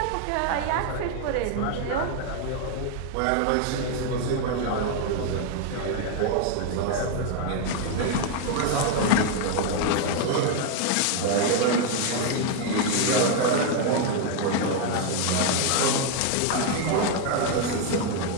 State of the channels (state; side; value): different; both; correlation 0.00